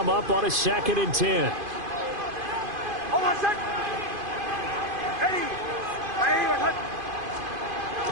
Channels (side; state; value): left; late; 2.5 ms